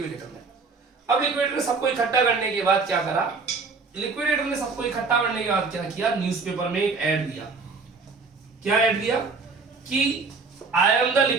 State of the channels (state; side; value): quieter; left; 4.4 dB